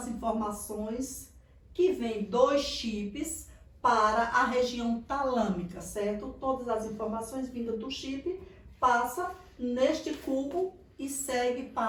informações que vêm dos chips para a região talâmica, certo? Todas as informações vindas do chip passa neste cubo e segue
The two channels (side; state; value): both; identical; correlation 1.00